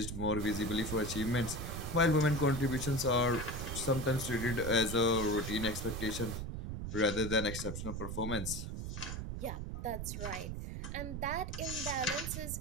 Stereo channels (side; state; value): right; noise; rumble, 5 dB below the sound